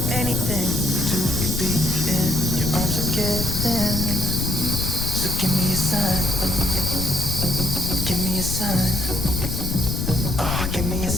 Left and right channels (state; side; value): noise; left; rumble, 3 dB below the sound